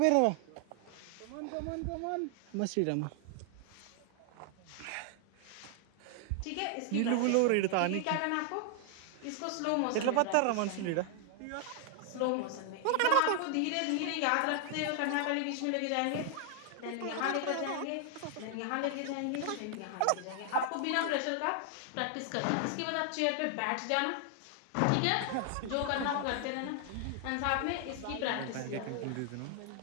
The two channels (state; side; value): different; both; correlation 0.00